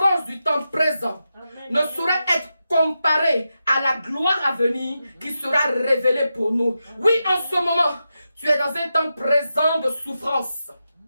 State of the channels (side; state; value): both; inverted; correlation -0.89